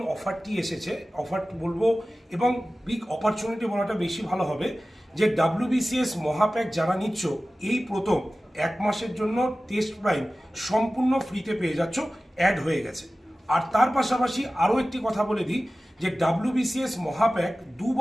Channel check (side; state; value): both; normal; correlation 0.96